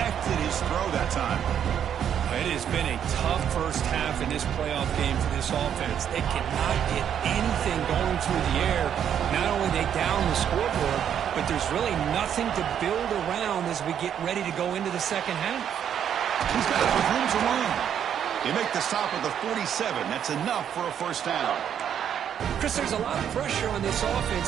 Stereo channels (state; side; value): quieter; left; 9.0 dB